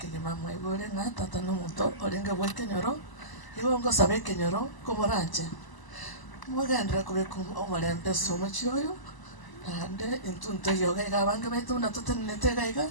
ibore na tata no muto olinga bwekenyoro ibongo sabe kenyoro komoranche mwagandira kubeko omolembe somochioyo ande intunto yoga igabange baitu na tutenete gaiga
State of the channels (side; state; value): right; late; 1.0 ms